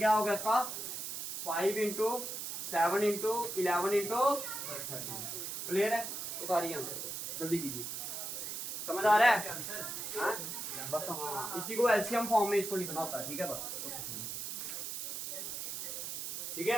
होगा इसका 5 इंटू 7 इंटू 11 इंटू 30। क्लियर है, उतारिए आंसर जल्दी कीजिए, समझ आ रहा है हाँ? बस हाँ इसी को एलसीएम फॉर्म में इसको लिखना होता है, ठीक है बस, ठीक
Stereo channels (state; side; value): noise; right; hiss, 5 dB below the sound